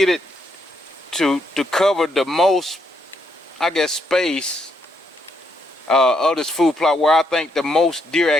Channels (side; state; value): both; normal; correlation 0.76